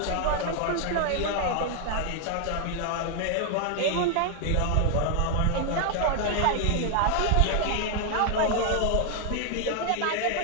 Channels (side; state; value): both; different; correlation 0.00